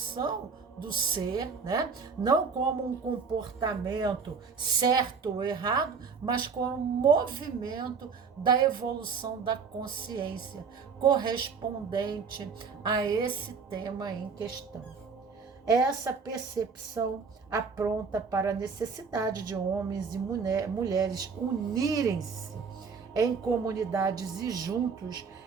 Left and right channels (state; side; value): quieter; left; 5.5 dB